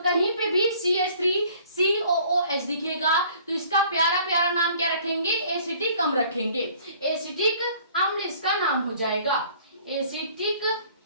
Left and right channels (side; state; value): both; inverted; correlation -0.54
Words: पे भी CH3COOH दिखेगा तो इसका प्यारा प्यारा नाम क्या रखेंगे, एसिटिक अम्ल रखेंगे। एसिटिक अम्ल इसका नाम हो जाएगा, एसिटिक